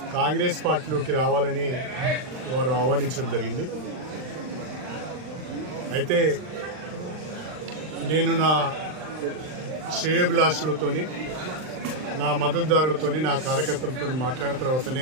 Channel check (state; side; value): late; left; 39 ms